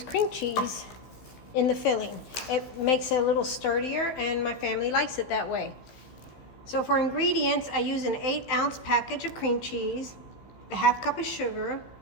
cream cheese in the filling. It makes it a little sturdier and my family likes it that way. So for ingredients, I use an 8-ounce package of cream cheese, a half cup of sugar,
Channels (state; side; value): late; right; 15 ms